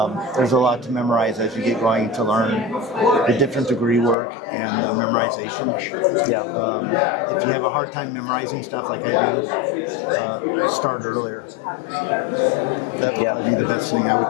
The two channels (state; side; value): drops out; right; at 4.2 s